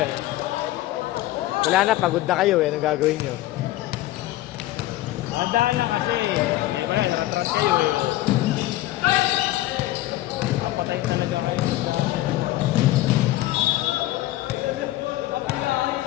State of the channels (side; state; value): right; quieter; 16.0 dB